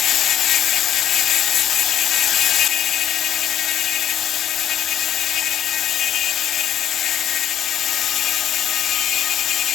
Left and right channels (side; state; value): right; quieter; 10.4 dB